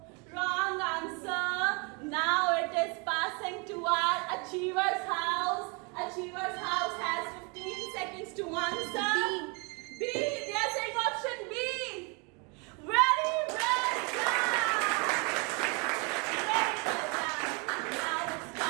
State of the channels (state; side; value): quieter; left; 32.2 dB